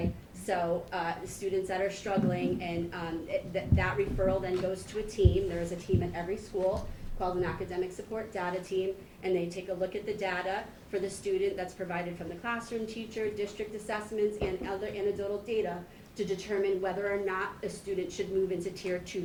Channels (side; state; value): both; identical; correlation 1.00